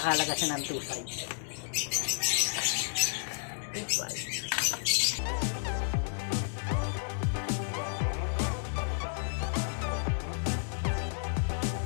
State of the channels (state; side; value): silent; right; 57 dB below the other